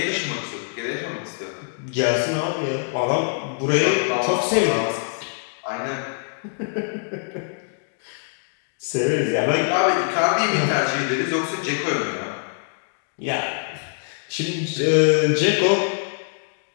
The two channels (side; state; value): right; silent; digital silence